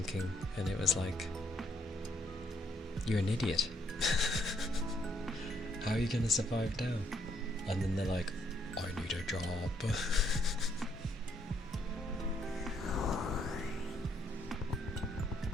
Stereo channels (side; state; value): both; normal; correlation 0.72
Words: and it was like, you're an idiot. How are you gonna survive now? And then they're like, I need a job.